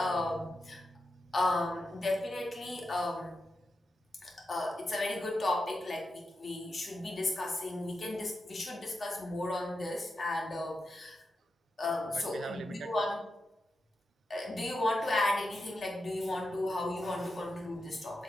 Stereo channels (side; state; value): both; normal; correlation 0.89